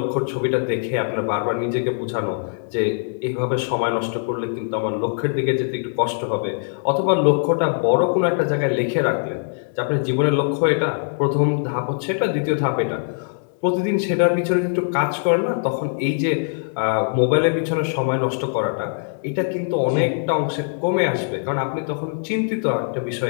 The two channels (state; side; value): silent; right; digital silence